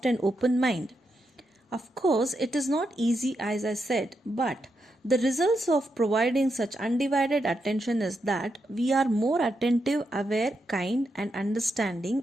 and open mind. Of course, it is not easy as I said, but the results of providing such undivided attention is that we are more attentive, aware, kind, and understanding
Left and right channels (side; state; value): both; normal; correlation 0.83